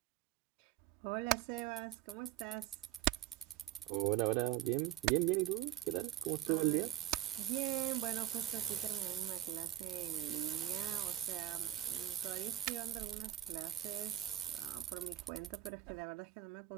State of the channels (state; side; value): quieter; left; 13.4 dB